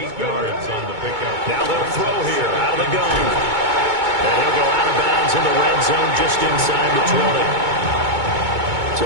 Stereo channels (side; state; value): left; late; 2.2 ms